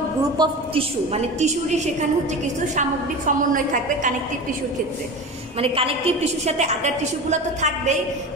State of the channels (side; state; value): both; normal; correlation 0.30